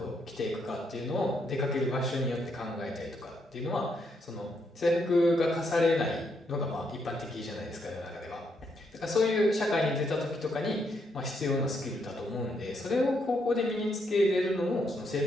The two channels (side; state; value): both; normal; correlation 0.76